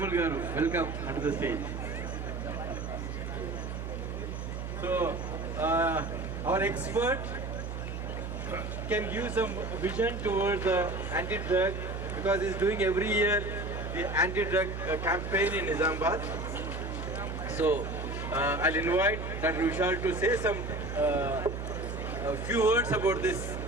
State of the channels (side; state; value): right; noise; hum, 6 dB below the sound